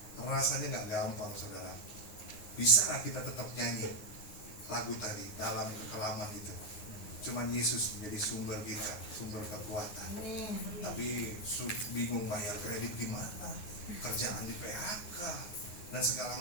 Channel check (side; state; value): right; late; 9.5 ms